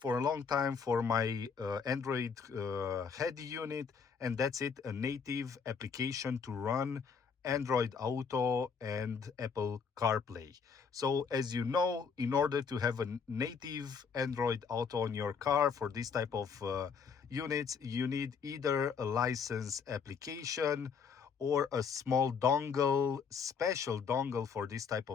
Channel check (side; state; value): right; quieter; 6.0 dB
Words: a long time for my Android head unit, and that's it, a native application to run Android Auto and Apple CarPlay. So as you know, in order to have a native Android Auto on your car for this type of units, you need either a license application or a small dongle, special dongle for this type